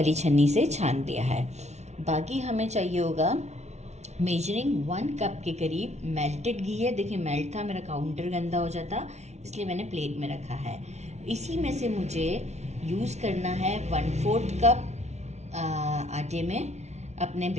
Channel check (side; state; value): left; late; 0.32 ms